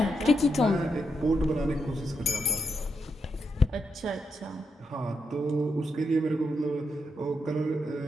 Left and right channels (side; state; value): both; normal; correlation 0.82